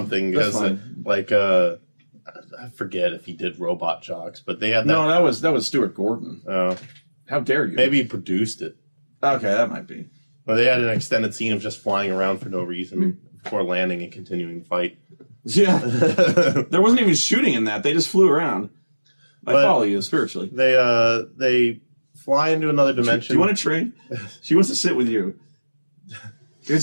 That's fine. I forget if he did Robot Jocks, but they had that. No, that was Stuart Gordon. Oh. How dare you? Maybe he produced it. Okay, that might be. But they had an extended scene of just flying around for no reason before landing and continuing the fight. Yeah. There wasn't even shooting in that. They just flew around. I follow you spiritually. They fly into another dimension. Do you want to trade? She wants to sit with you.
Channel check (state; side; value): inverted; both; correlation -1.00